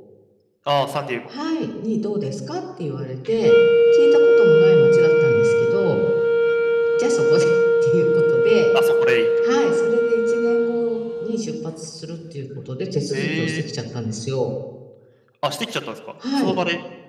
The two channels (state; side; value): identical; both; correlation 1.00